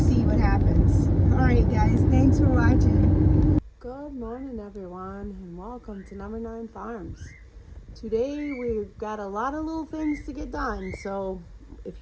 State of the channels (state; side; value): identical; both; correlation 1.00